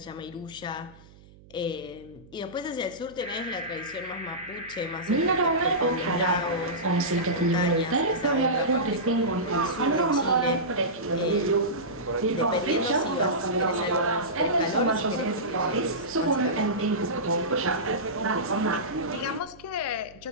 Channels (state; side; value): noise; right; hum, 24 dB below the sound